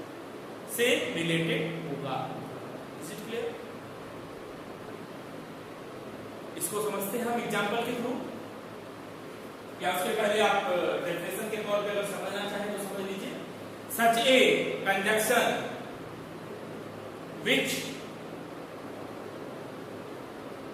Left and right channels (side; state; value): both; identical; correlation 1.00